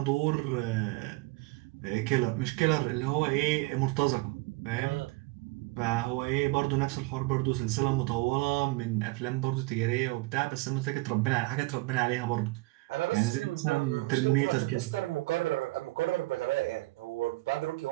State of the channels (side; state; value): left; quieter; 21.9 dB